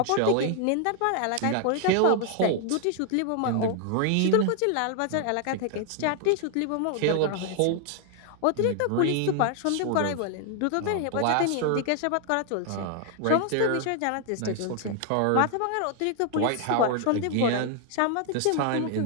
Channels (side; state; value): both; different; correlation 0.00